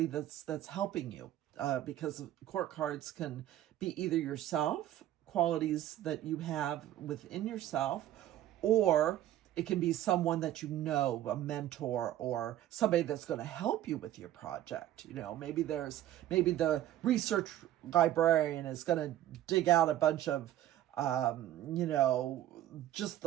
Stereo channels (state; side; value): quieter; left; 12.9 dB